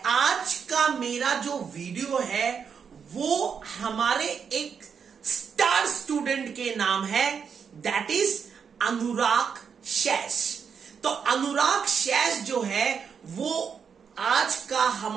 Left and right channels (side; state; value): left; quieter; 6.7 dB